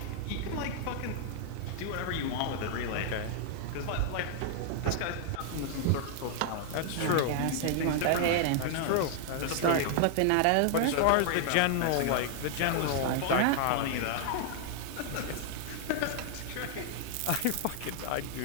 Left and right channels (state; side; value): different; both; correlation 0.00